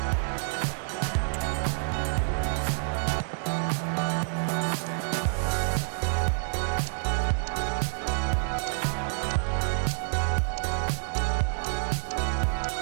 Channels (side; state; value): left; silent; 59 dB below the other